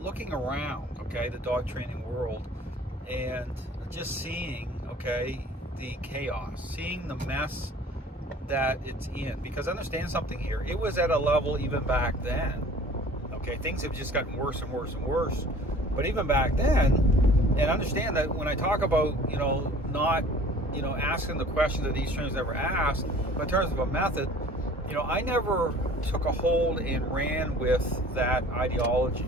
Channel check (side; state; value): both; normal; correlation 0.48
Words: around, okay, the dog training world, and just seeing, okay, the chaos, seeing the mess that it's in. Because understand something here, it was at a level even back then, okay, things have just gotten worse and worse and worse. But even back then, and understand that when I talk about, not, asking the questions that these trainers never asked, but in terms of a method, I never took a hold and ran with that ideology,